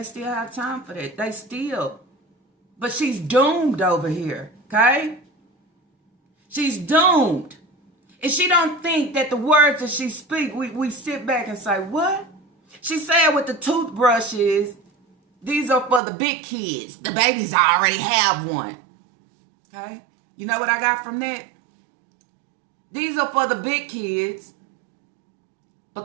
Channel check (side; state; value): left; drops out; at 16.0 s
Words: still have time for that. They still. But she's doomed over here, okay? She's doomed. And she don't think that the words that she speak, we sit back and say, what? She said with the toothbrushes, these are for the big kids. The babies already have one. Okay? You know what I got from that? These are for the big kids